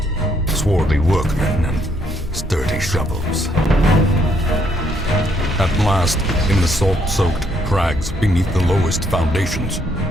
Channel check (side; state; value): both; normal; correlation 0.71